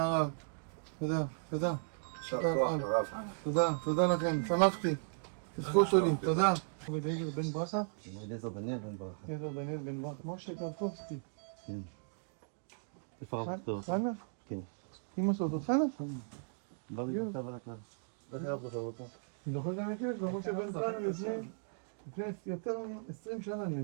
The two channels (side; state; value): left; silent; digital silence